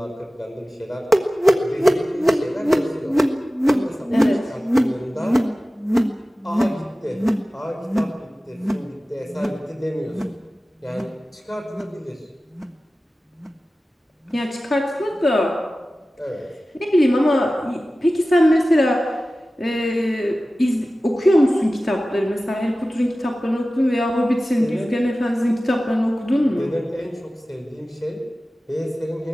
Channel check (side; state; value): both; normal; correlation 0.96